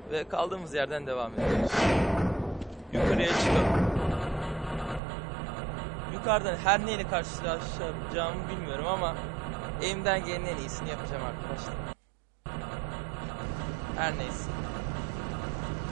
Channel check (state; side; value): drops out; left; at 5.0 s